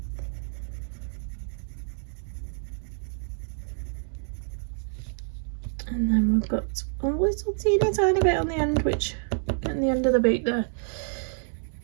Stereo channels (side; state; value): left; silent; digital silence